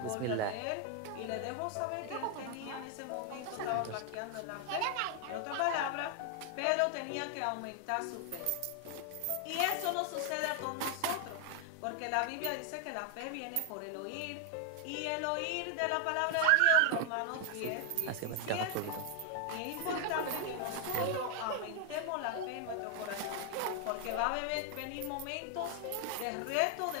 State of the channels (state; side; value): different; both; correlation 0.00